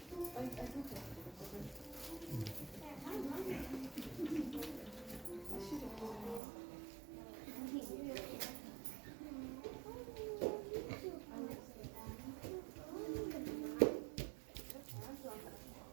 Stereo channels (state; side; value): drops out; left; at 6.4 s